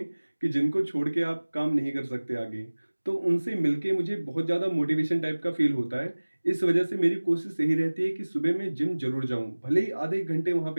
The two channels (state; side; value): inverted; both; correlation -1.00